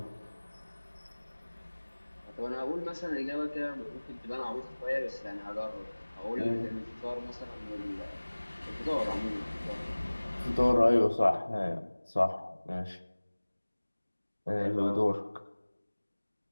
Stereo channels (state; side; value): inverted; both; correlation -1.00